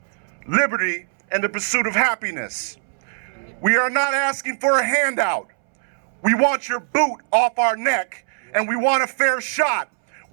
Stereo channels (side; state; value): left; silent; 65 dB below the other